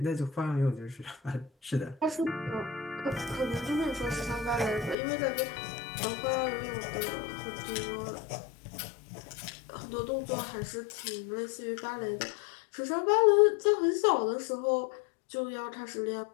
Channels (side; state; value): right; drops out; at 5.0 s